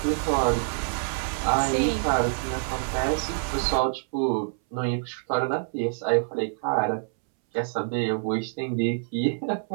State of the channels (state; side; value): silent; left; 61 dB below the other